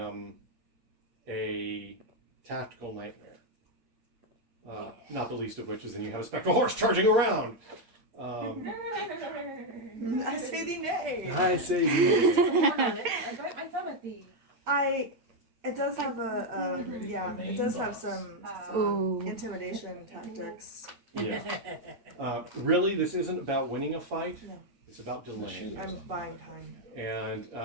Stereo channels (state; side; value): late; left; 8.5 ms